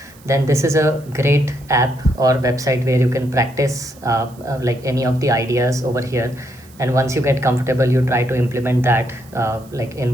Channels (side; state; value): right; noise; hiss, 26 dB below the sound